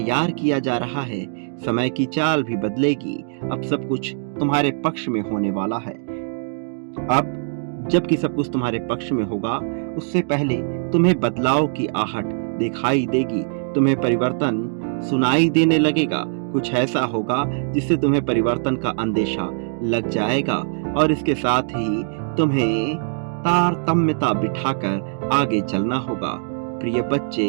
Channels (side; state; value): left; silent; digital silence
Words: किया जा रहा है। समय की चाल भी बदलेगी। अब सब कुछ तुम्हारे पक्ष में होने वाला है। अब जबकि सब कुछ तुम्हारे पक्ष में होगा, उससे पहले तुम्हें बदलाव की आहट दिखाई देगी, तुम्हें परिवर्तन सुनाई देने लगेगा। कुछ ऐसा होगा जिससे तुम्हें परिवर्तन का अंदेशा लग जाएगा और इसके साथ ही तुम्हें तारतम्यता बिठाकर आगे चलना होगा। प्रिय